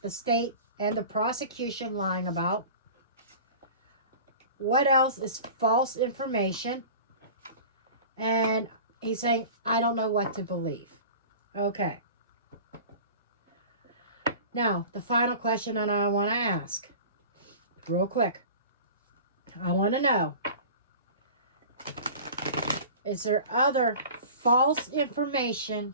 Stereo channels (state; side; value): inverted; both; correlation -0.39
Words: the state and the prosecution lying about? What else is false information? And he's saying, I don't know what to believe. Okay. Now, the final question that I want to ask, real quick. I want to know, is there other false